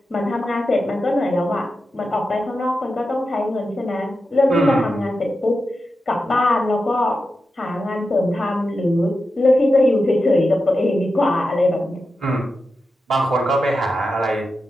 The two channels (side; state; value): both; normal; correlation 0.90